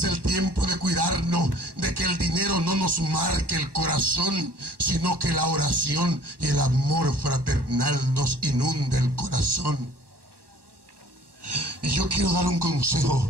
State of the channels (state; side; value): late; left; 1.2 ms